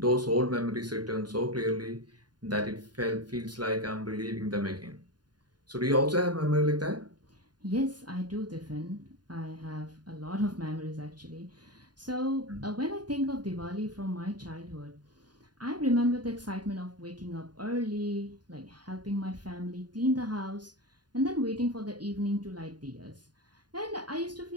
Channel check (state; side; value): late; left; 0.70 ms